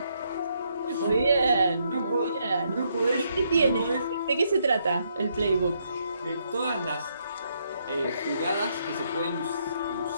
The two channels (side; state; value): both; inverted; correlation -0.74